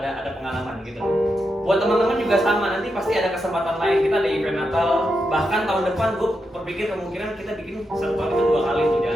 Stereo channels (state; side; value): normal; both; correlation 0.85